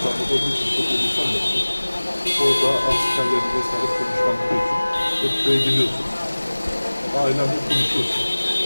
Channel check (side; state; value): both; inverted; correlation -1.00